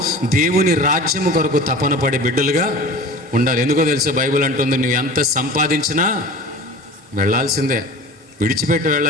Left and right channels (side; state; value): both; normal; correlation 0.38